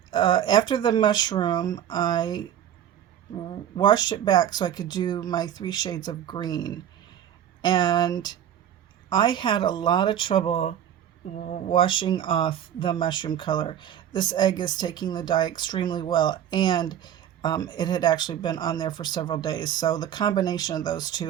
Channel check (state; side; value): quieter; left; 10.4 dB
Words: after the mushroom, I washed it back so I could do my 3 shades of green. And I had a lot of trouble washing off the mushroom color. This egg is taking the dye extremely well, and it had actually been on there for several days. So the combination of those